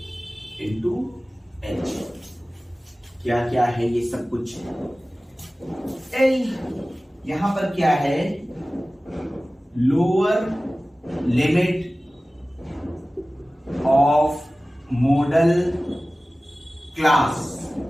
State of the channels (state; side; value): normal; both; correlation 0.97